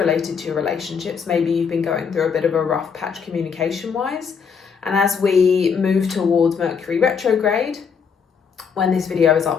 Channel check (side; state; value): right; quieter; 6.3 dB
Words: to your relationships. Maybe you've been going through a bit of a rough patch communication-wise. And as we move towards Mercury retrograde, when this video is